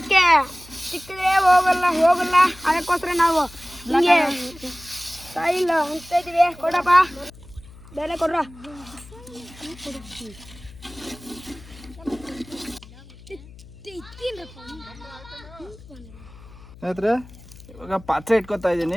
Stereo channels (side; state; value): left; noise; hum, 20 dB below the sound